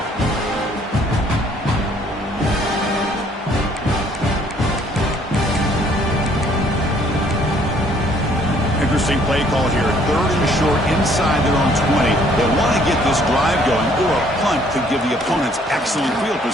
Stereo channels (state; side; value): normal; both; correlation 0.62